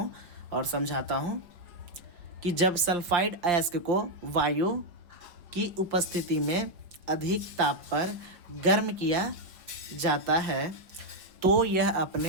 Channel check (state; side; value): late; left; 5.7 ms